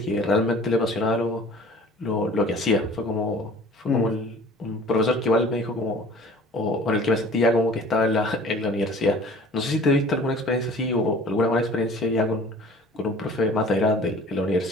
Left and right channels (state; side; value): normal; both; correlation 0.47